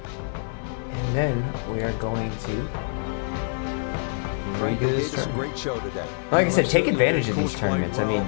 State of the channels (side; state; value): right; silent; digital silence